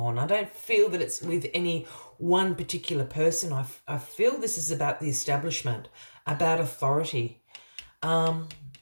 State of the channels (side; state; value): both; inverted; correlation -1.00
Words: I don't feel that it's with any one particular person. I feel this is about the establishment, about authority.